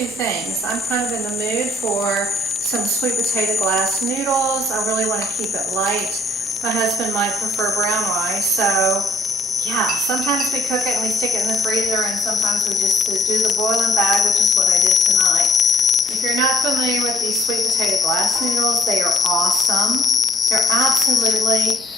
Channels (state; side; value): normal; both; correlation 0.64